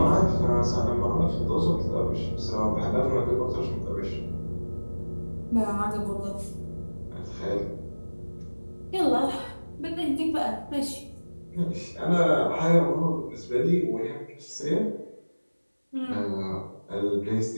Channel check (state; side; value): inverted; both; correlation -1.00